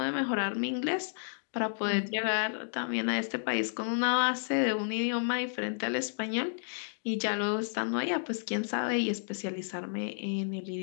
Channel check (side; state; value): right; silent; digital silence